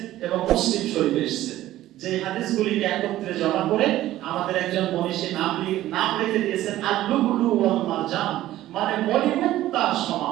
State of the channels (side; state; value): left; quieter; 14.5 dB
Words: এবং মুসলিম শরীফে এসেছে। যে হাদিসগুলিকে একত্রে জমা করে আমাদের একজন মনীষী নাম রেখে দিয়েছেন আল-লুবলু ওয়াল মারজান, মানে মণিমুক্তার